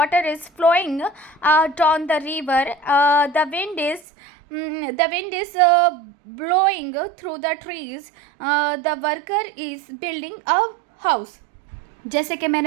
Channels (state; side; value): drops out; left; at 4.0 s